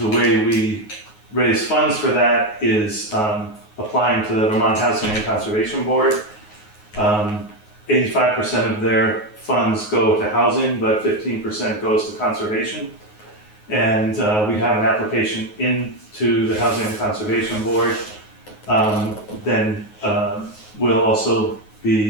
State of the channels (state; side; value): late; right; 9.5 ms